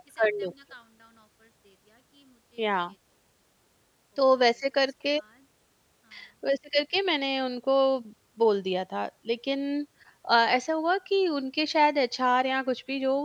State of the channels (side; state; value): both; identical; correlation 1.00